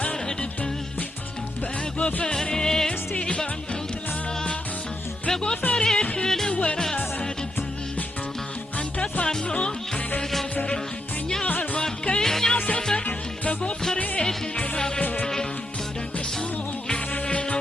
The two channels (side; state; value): both; normal; correlation 0.81